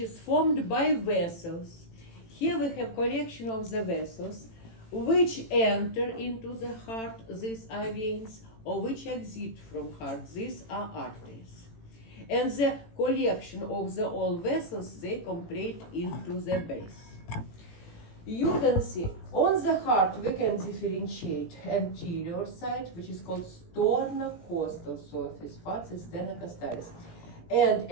formed by vessels. Here we have collection of the vessels which enter into the heart, these are veins, or which exit from heart, these are arteries. And the collection of the all vessels, they complete into the base. You can see on the heart we can differentiate anterior side, which is called sternocostal surface, facet sternocostallis, and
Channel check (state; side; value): late; right; 18 ms